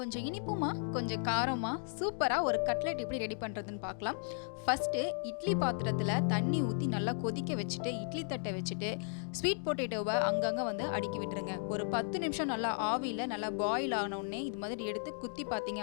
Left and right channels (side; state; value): right; silent; digital silence